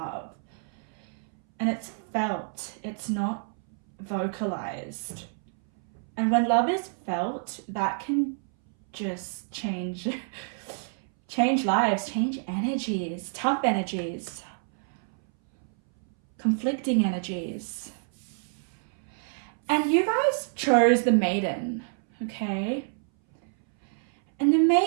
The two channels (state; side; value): silent; left; 59 dB below the other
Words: and it's felt, it's not vocalized. And when love is felt, that can just change lives, change energies, tough energies, conflicting energies. And you guys chose the maiden, okay? And the